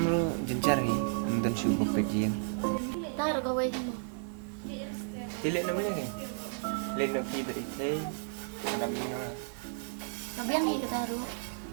ro jencar hi, dan su ko pejien. Tar ko wai kamu. Cilek namanya ke? Le no pi beri tei. Nam ni na. Kabiang ni kata ro.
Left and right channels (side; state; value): left; silent; digital silence